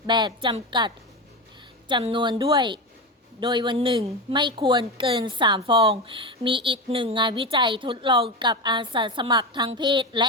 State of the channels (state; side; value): normal; both; correlation 0.19